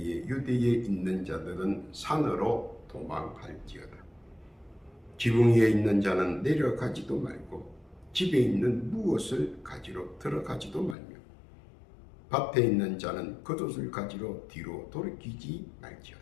유대에 있는 자들은 산으로 도망할지어다. 지붕 위에 있는 자는 내려가지도 말고 집에 있는 무엇을 가지러 들어가지도 말며 밭에 있는 자는 겉옷을 가지러 뒤로 돌이키지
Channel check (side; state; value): right; drops out; at 11.0 s